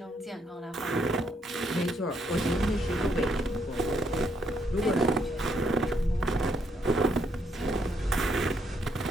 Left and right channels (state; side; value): normal; both; correlation 0.73